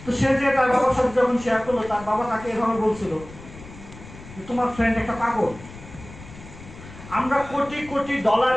তো সে যে তার বাবার সাথে যখন শেয়ার করলো, তার বাবা তাকে এভাবে বলছিল যে তোমার ফ্রেন্ড একটা পাগল, আমরা কোটি কোটি ডলার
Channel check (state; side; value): noise; left; rumble, 17 dB below the sound